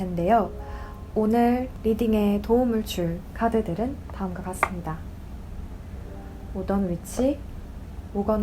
오늘 리딩에 도움을 줄 카드들은 다음과 같습니다. 오던 위치,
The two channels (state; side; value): identical; both; correlation 1.00